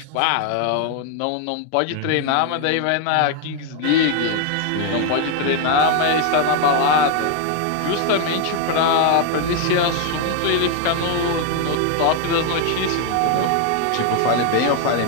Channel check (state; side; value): different; both; correlation 0.01